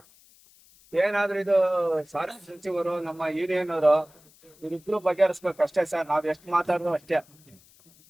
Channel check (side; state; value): left; noise; hiss, 28 dB below the sound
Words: ಏನಾದ್ರೂ ಇದು ಸಾರಿಗೆ ಸಚಿವರು, ನಮ್ಮ ಯೂನಿಯನ್ ಅವರು ಇವ್ರಿಬ್ರು ಬಗೆಹರಿಸ್ಬೇಕು ಅಷ್ಟೇ ಸರ್. ನಾವ್ ಎಷ್ಟು ಮಾತಾಡೋದು ಅಷ್ಟೇ.